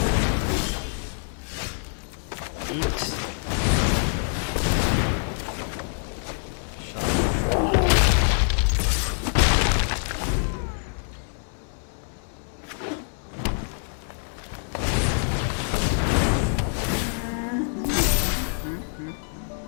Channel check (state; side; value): silent; right; 61 dB below the other